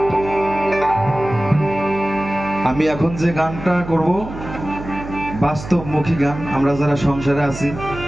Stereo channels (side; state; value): right; noise; hum, 11 dB below the sound